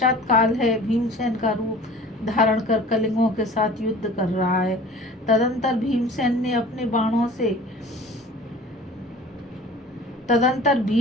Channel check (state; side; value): normal; both; correlation 0.44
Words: काल है, भीमसेन का रूप धारण कर कलिंगों के साथ युद्ध कर रहा है। तदंतर भीष्म